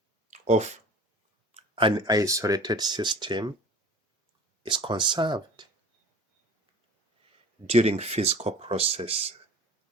of an isolated system is conserved during physical process.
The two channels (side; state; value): both; normal; correlation 0.42